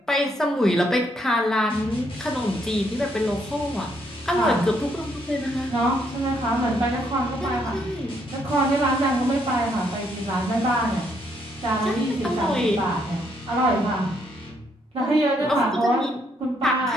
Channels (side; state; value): both; normal; correlation 0.72